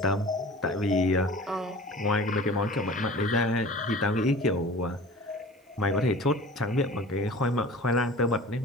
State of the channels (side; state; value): both; normal; correlation 0.41